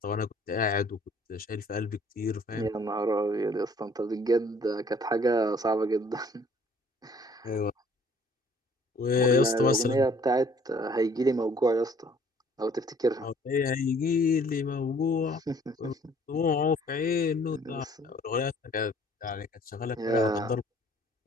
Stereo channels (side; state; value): both; normal; correlation 0.58